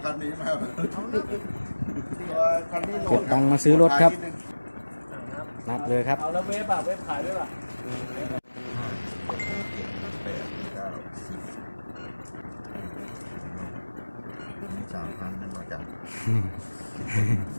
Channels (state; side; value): inverted; both; correlation -1.00